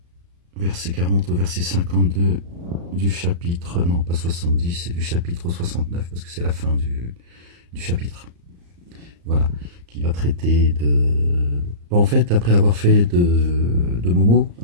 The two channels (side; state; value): left; late; 35 ms